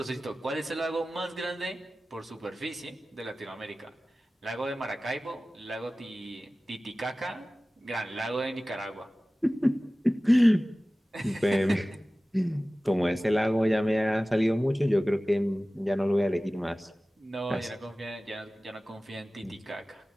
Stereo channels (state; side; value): normal; both; correlation 0.97